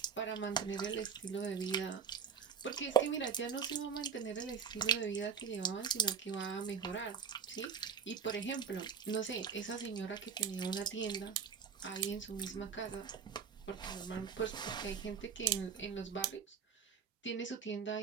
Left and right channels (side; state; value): left; quieter; 6.4 dB